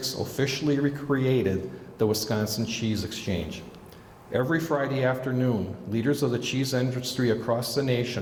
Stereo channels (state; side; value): identical; both; correlation 1.00